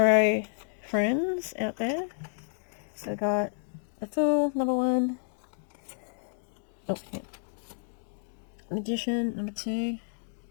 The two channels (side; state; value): right; silent; digital silence